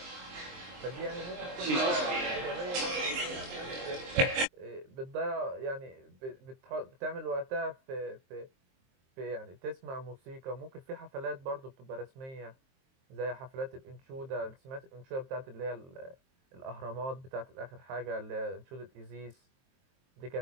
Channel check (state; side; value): late; left; 23 ms